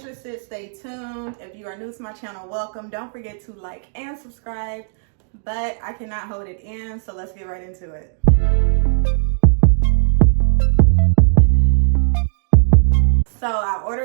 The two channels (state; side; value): silent; left; digital silence